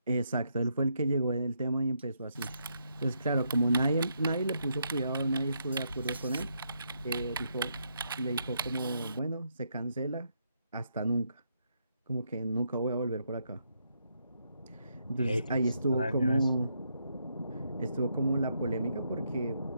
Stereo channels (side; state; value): both; inverted; correlation -0.77